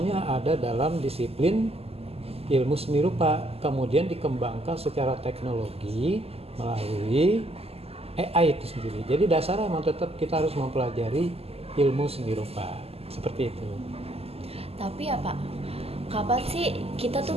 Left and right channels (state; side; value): late; left; 0.29 ms